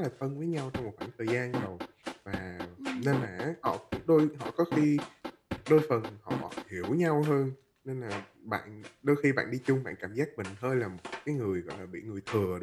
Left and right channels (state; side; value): identical; both; correlation 1.00